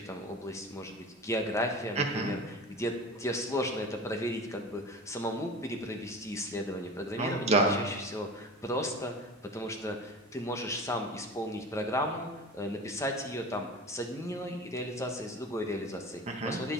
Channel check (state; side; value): normal; both; correlation 0.34